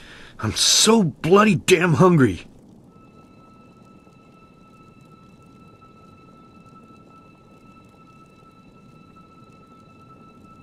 I'm so bloody damn hungry.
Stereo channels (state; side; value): identical; both; correlation 1.00